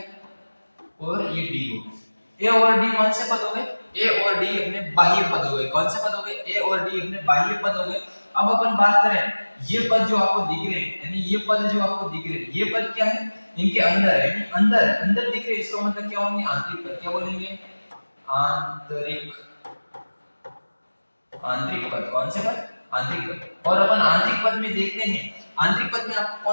और ये डी हो गए। ए और डी कौन से पद हो गए? ए और डी अपने बाह्य पद हो गए। कौन से पद हो गए? ए और डी अपने बाह्य पद हो गए। अब अपन बात करें, ये पद जो आपको दिख रहे हैं, यानी ये पद जो आपको दिख रहे हैं, ये पद क्या है? इनके अंदर है, यानी अंदर दिख रहे हैं। इसका मतलब क्या होंगे? आंतरिक पद। क्या बोलेंगे? आंतरिक पद। कौन से पद? आंतरिक पद। और अपन आंतरिक पद में देखते हैं, आंतरिक पद में आपको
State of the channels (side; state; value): both; inverted; correlation -1.00